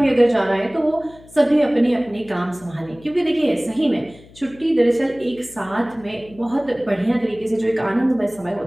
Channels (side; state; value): left; noise; hum, 23 dB below the sound